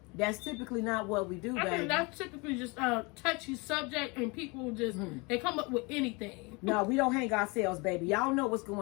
That's typically not what we do, I baby. think that's typically just a touchy subject, and people just they come up with anything. No, we don't hang ourselves, baby. Y'all know what's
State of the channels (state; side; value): quieter; right; 27.8 dB